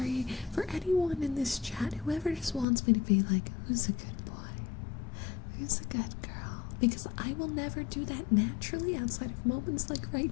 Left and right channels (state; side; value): drops out; right; at 2.7 s